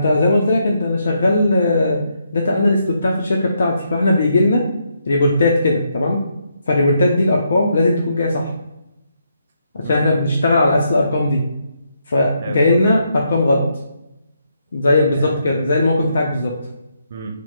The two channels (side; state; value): both; inverted; correlation -0.78